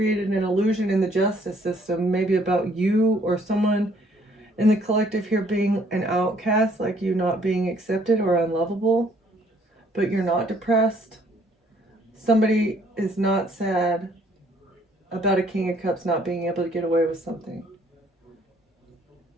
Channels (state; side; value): normal; both; correlation 0.63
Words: an illusion in the justice system, maybe about you or someone in the collective here being an outcast, like you not being accepted or unlovable, but you're not depressed. Somebody is not sad about a King of Cups not being able to get away with something.